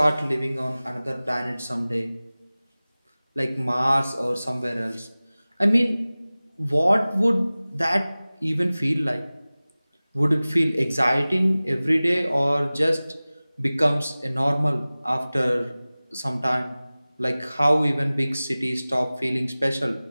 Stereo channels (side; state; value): both; inverted; correlation -0.98